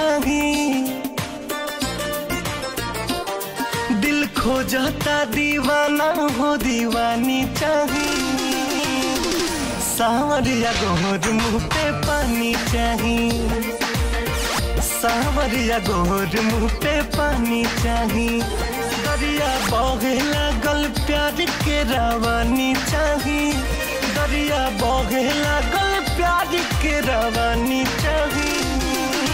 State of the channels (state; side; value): identical; both; correlation 1.00